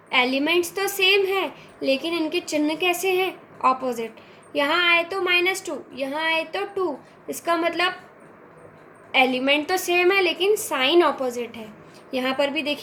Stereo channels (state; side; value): identical; both; correlation 1.00